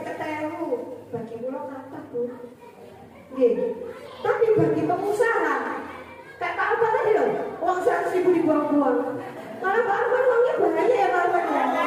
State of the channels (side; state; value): both; identical; correlation 1.00